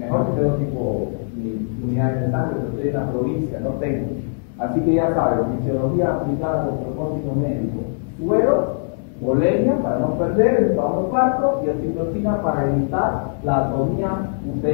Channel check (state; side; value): silent; right; 65 dB below the other